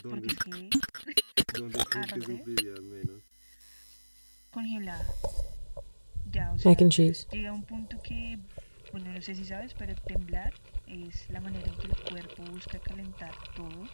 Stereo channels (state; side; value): inverted; both; correlation -1.00